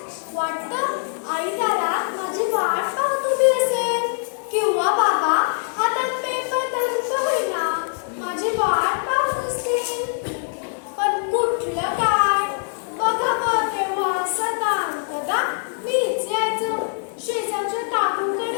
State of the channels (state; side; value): silent; right; digital silence